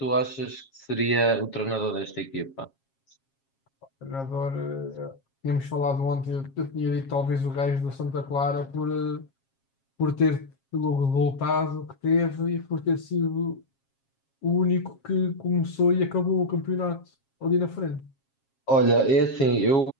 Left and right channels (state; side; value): late; right; 7.4 ms